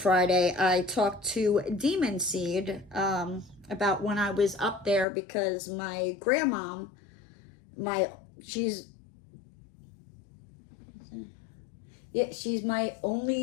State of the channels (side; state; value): right; drops out; at 5.1 s